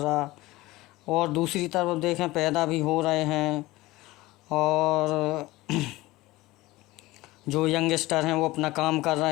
और दूसरी तरफ देखें, पैदा भी हो रहे हैं। और जो यंगस्टर हैं वो अपना काम कर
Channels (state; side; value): quieter; right; 19.2 dB